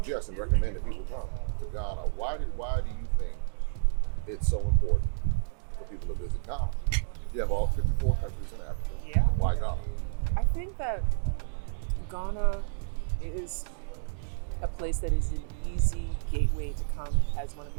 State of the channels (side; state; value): left; silent; digital silence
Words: and recommend that people come to Ghana. Why do you think it's so important for people to visit Ghana? You have all 54 countries in Africa. Yeah. Why Ghana? I think that Ghana is a place that is an easy gateway to come as one of